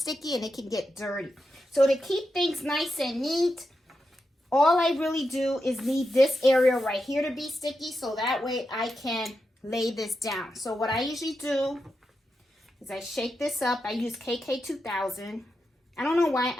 and it can get dirty. So to keep things nice and neat, all I really do is need this area right here to be sticky so that way I can lay this down. So what I usually do is I shake this up. I use KK2000. I don't know why,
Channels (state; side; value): normal; both; correlation 0.87